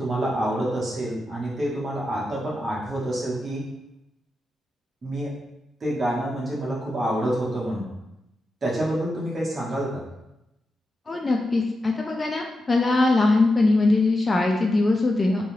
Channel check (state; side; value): normal; both; correlation 0.89